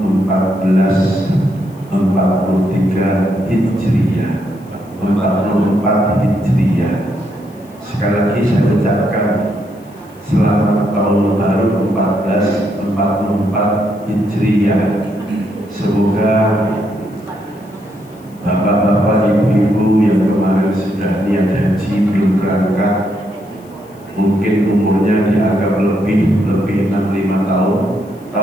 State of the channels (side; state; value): left; noise; hiss, 29 dB below the sound